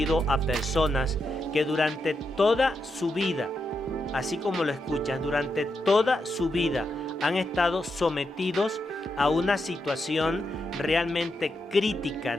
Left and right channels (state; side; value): normal; both; correlation 0.84